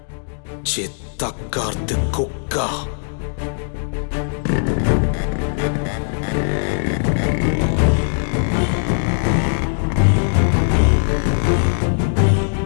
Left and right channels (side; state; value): right; silent; digital silence